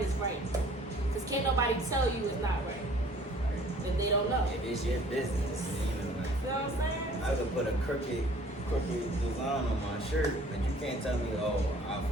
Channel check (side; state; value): both; normal; correlation 0.53